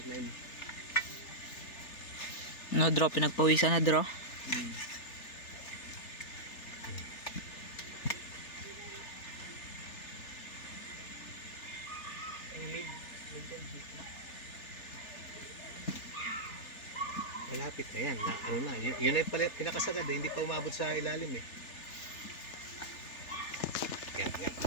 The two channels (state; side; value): late; right; 3.4 ms